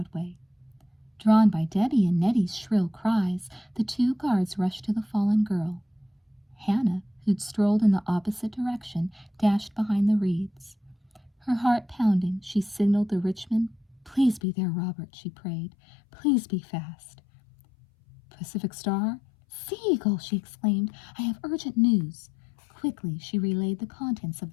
Drawn by Debbie and Nettie's shrill cries, the 2 guards rushed to the fallen girl. Hannah, who'd strolled in the opposite direction, dashed behind the reeds. Her heart pounding, she signaled the Richmond. "Please be there, Robert," she prayed. "Please be fast." "Pacific Star?" "Sea Eagle!" she exclaimed. "I have urgent news." Quickly, she relayed the contents of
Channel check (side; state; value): right; drops out; at 14.4 s